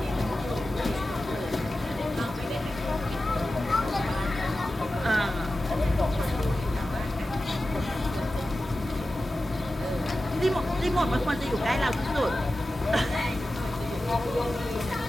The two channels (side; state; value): both; normal; correlation 0.94